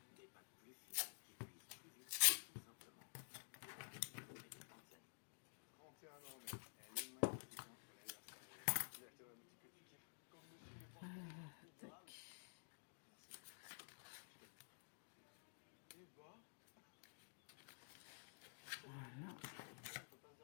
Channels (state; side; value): silent; right; digital silence